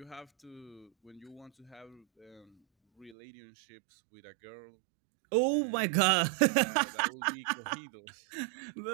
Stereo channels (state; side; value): drops out; left; at 3.2 s